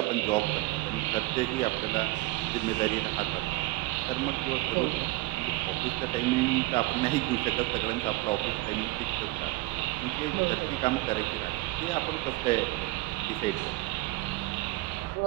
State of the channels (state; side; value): quieter; left; 19.4 dB